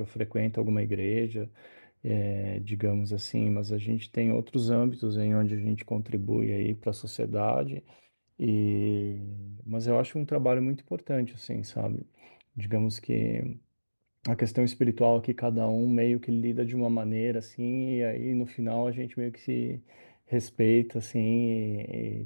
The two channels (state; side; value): inverted; both; correlation -1.00